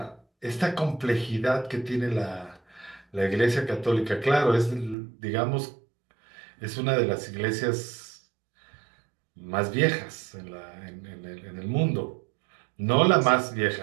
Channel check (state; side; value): drops out; left; at 5.0 s